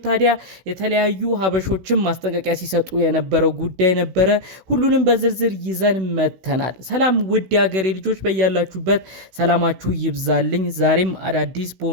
ታዲያ የተለያዩ ሀበሾችም ማስጠንቀቂያ ሲሰጡ የነበረው ጉዳይ ነበረ። ሁሉንም በዝርዝር ይዘን መተናል። ሰላም ውድ የሀገሬ ልጆች፣ በያላችሁበት ሰላማችሁ ይብዛልኝ። ዛሬም አዳዲስ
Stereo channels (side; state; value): left; late; 16 ms